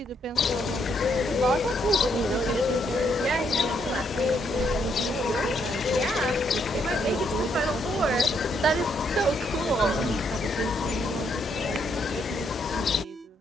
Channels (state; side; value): normal; both; correlation 0.74